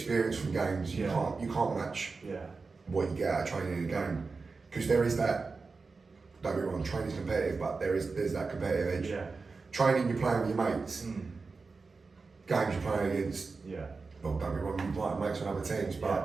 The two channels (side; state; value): left; quieter; 4.3 dB